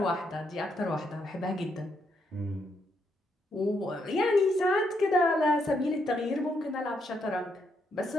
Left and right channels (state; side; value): normal; both; correlation 0.77